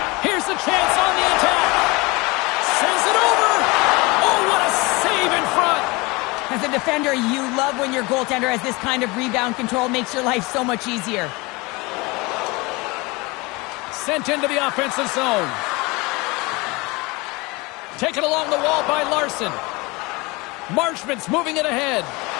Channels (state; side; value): quieter; right; 24.9 dB